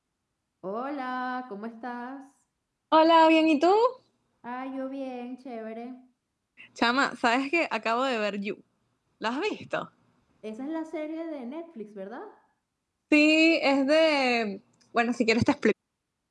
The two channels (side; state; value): both; identical; correlation 1.00